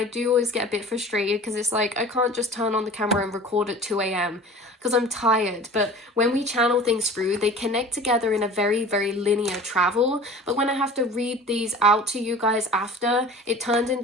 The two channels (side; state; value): both; normal; correlation 0.42